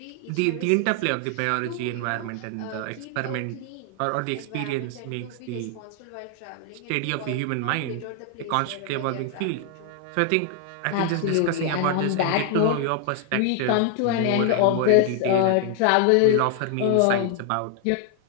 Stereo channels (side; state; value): both; different; correlation 0.00